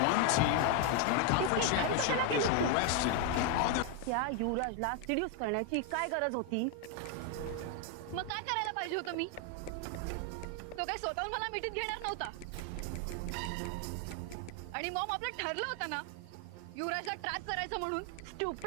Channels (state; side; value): different; both; correlation 0.01